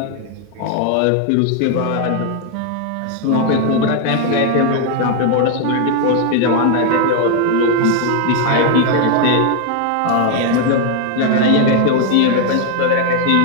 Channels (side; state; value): both; different; correlation 0.00